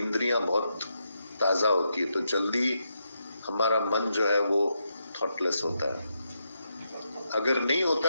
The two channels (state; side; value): inverted; both; correlation -0.82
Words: बहुत ताजा होती है, तो जल्दी हमारा मन जो है वो थॉटलेस होता है। अगर नहीं होता